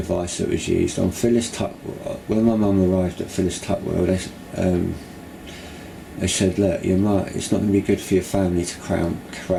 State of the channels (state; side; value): identical; both; correlation 1.00